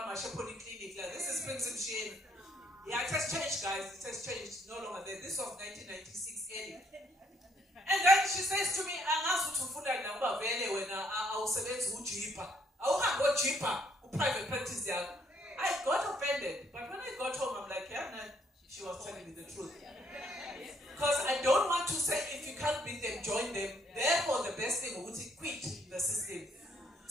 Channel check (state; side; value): normal; both; correlation 0.69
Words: my clinic, this is Prince Msheni. Yeah, it has changed, guys. It has changed. No longer there. This was 1996 early. And then she says to me, I'm asked to food and number when I was select who cheaper. I will go cheaper who private practice there. I got offended. But when I got home, I'm like, yeah, no, she was telling me the truth. Because I don't want to say if you can't beat them, join them. Therefore, the best thing would be quit the system.